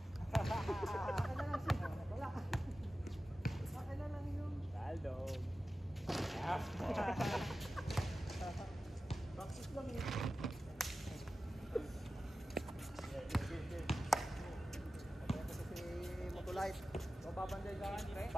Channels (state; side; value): normal; both; correlation 0.94